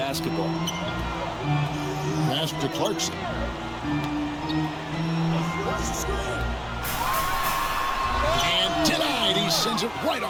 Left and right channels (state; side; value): identical; both; correlation 1.00